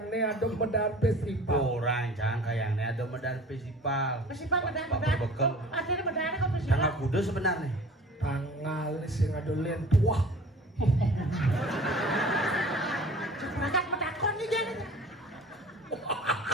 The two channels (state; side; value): normal; both; correlation 0.45